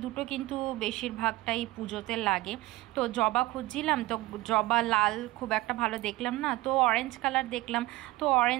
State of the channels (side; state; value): left; quieter; 18.9 dB